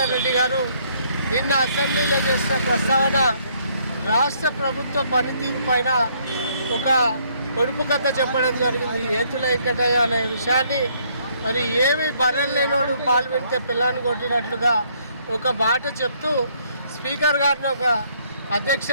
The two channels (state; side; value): inverted; both; correlation -0.67